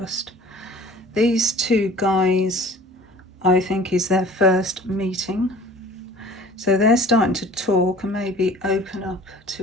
These 2 guys, I think, is their first meeting. So they're starting to talk and maybe open up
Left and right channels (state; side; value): normal; both; correlation 0.47